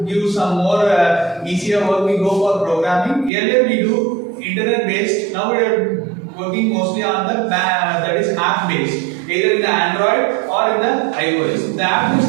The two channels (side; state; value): left; drops out; at 3.3 s